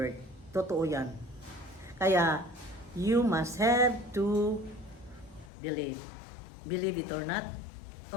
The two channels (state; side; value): drops out; right; at 5.5 s